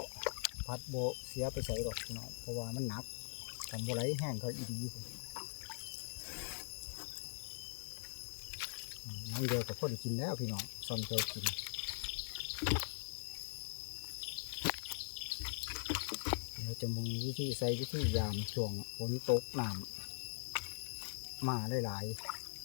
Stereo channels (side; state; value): right; silent; digital silence